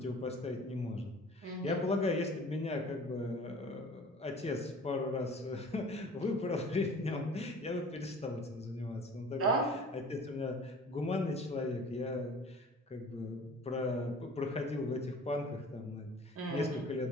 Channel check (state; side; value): normal; both; correlation 0.46